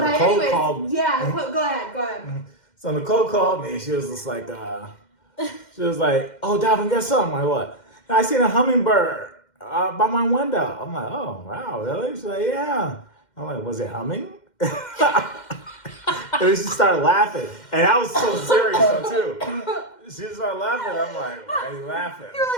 Nicole anyways, called me. yeah. Go ahead. So Nicole called me. She was just like, oh, Dalvin, guess something? I'm like, what? I seen a hummingbird by my window. I'm like, oh, wow, really? She's like, yeah. I'm like, was it humming? And she started laughing. And I was so serious, too. She started laughing. I'm like, why are you laughing? You were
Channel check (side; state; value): right; late; 2.1 ms